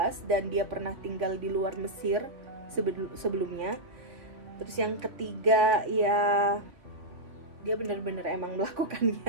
dan dia pernah tinggal di luar Mesir sebelumnya. Terus yang ketiga ya dia benar-benar emang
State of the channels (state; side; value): late; left; 3.7 ms